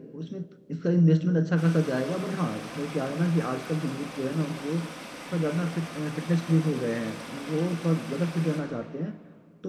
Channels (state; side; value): identical; both; correlation 1.00